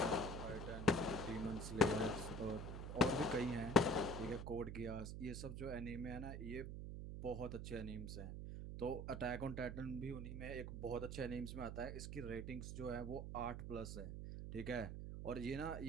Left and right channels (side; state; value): right; noise; hum, 6 dB below the sound